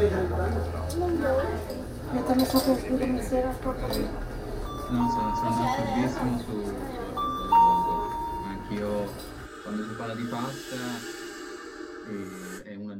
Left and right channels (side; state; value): both; identical; correlation 1.00